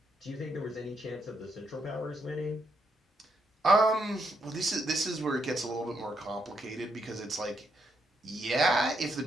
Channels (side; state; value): both; normal; correlation 0.78